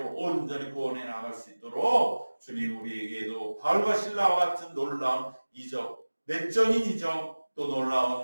온전히 구원해 나갈 수 있도록 주님 우리에게도 바울과 실라와 같은 놀라운 이적, 내적인 이적, 또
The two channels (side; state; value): both; inverted; correlation -1.00